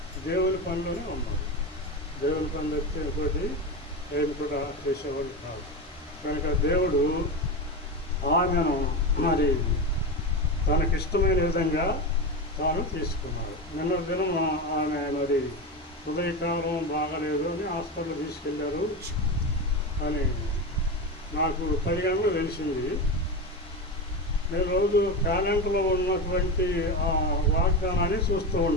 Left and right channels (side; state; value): both; normal; correlation 0.19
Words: దేవుని పనిలోనే ఉన్నారు. దేవుని పనులు ఎత్తే ఇంకోటి ఏది కూడా చేసేవాడు కాదు. కనుక దేవుడు ఆమెను మరి తనకిష్టమైన విధంగా తాను తీసుకున్నాడు. నిన్న దినం ఆమె మరి ఉదయకాలం బాగాలేదు అని హాస్పిటల్ తీసుకెళ్ళారు అని నాకు 10 గంటలు తెలిసింది. నేను రోజు క్యాలెండర్లో ఉన్నటువంటి ఆ వాగ్దానాన్ని చూస్తూ